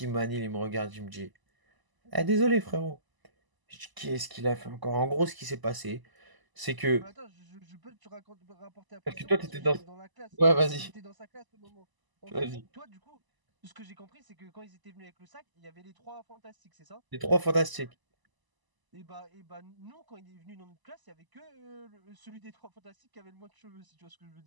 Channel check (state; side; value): late; left; 1.0 ms